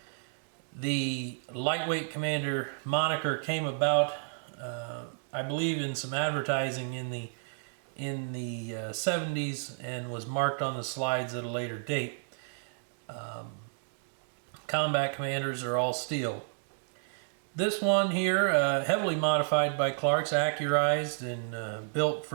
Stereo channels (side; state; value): left; silent; digital silence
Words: The lightweight Commander moniker came about, I believe, in some advertising in the 70s and was marked on the slides at a later date. Combat Commanders are all steel. This one here, heavily modified by Clark's, accurized and built